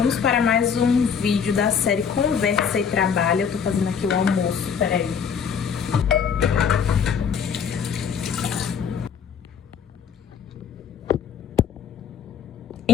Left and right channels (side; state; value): right; quieter; 7.0 dB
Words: para mais um vídeo da série Conversa e Trabalho. Eu tô fazendo aqui o almoço, peraí.